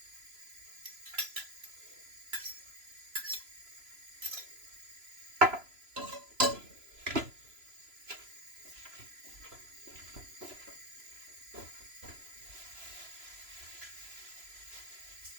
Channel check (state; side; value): late; left; 3.0 ms